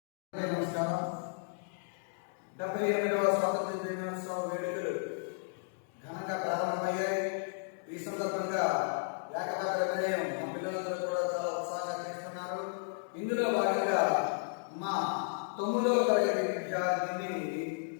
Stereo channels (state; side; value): silent; right; digital silence